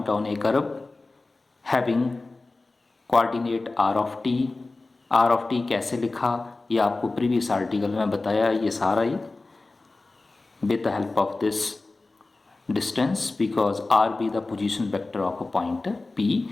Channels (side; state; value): right; quieter; 3.3 dB